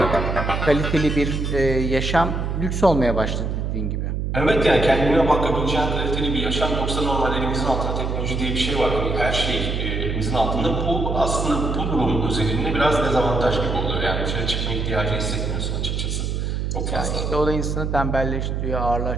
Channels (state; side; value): noise; right; hum, 1 dB below the sound